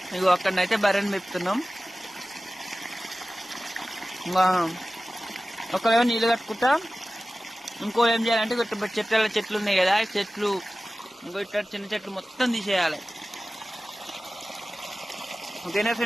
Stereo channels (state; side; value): normal; both; correlation 0.96